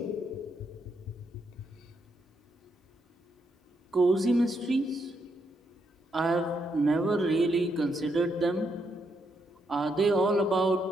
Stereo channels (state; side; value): normal; both; correlation 0.79